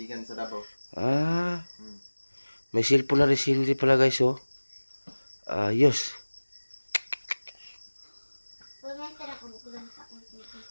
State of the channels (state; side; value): inverted; both; correlation -1.00